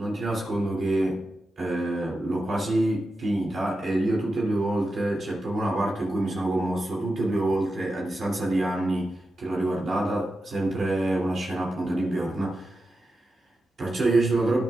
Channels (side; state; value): both; normal; correlation 0.90